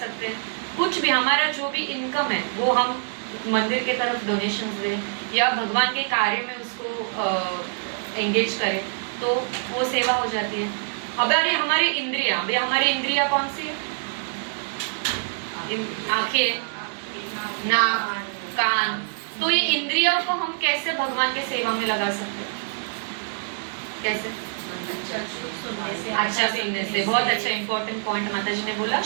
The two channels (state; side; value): silent; left; 62 dB below the other